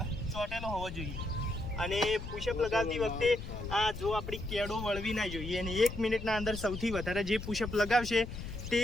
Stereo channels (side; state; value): left; noise; rumble, 8 dB below the sound